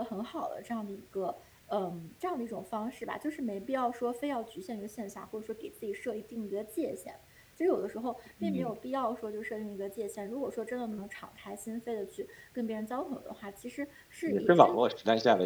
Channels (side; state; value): both; identical; correlation 1.00